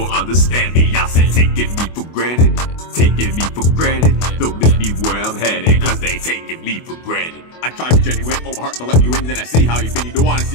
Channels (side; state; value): right; late; 24 ms